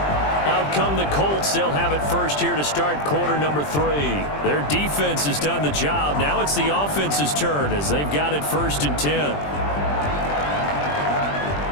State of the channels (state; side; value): late; right; 20 ms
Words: Out come the Colts. They'll have it first here to start quarter number 3. Their defense has done the job. Now it's the offense's turn as they've got it 1st and 10.